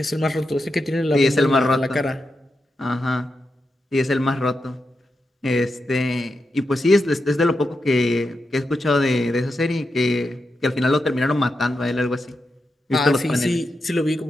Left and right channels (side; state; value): both; normal; correlation 0.87